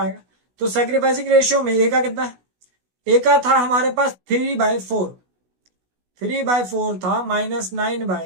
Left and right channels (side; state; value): left; late; 16 ms